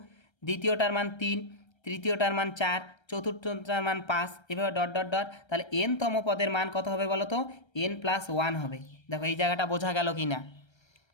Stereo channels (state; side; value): late; right; 1.3 ms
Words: দ্বিতীয়টার মান 3, তৃতীয়টার মান 4, চতুর্থটার মান 5, এভাবে ডট ডট ডট। তাহলে N-তম পদের মান কত হবে বলো তো, N+1 হবে। দেখো এই জায়গাটা বোঝা গেল কি না?